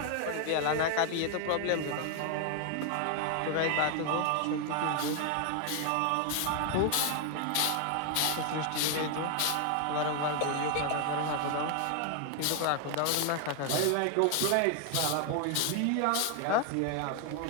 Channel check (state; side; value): different; both; correlation 0.00